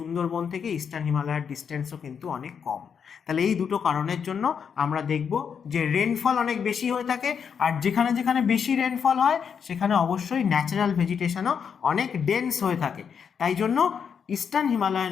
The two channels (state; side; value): quieter; right; 7.0 dB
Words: থেকে ইস্টার্ন হিমালয়ার ডিস্টেন্সও কিন্তু অনেক কম। তাহলে এই দুটো কারণের জন্য আমরা দেখব যে রেনফল অনেক বেশি হয়ে থাকে, আর যেখানে যেখানে বেশি রেনফল হয় সেখানে অবশ্যই ন্যাচারাল ভেজিটেশনও অনেক ডেন্স হয়ে থাকে। তাই জন্য ইস্টার্ন হিমালয়ান